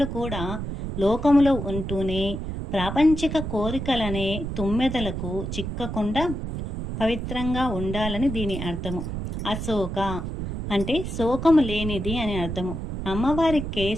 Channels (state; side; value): noise; right; rumble, 5 dB below the sound